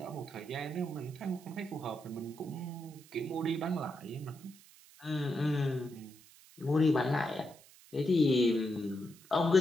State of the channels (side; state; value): right; noise; hiss, 23 dB below the sound